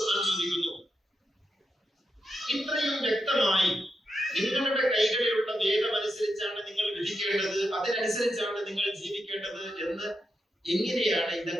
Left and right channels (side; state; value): both; normal; correlation 0.86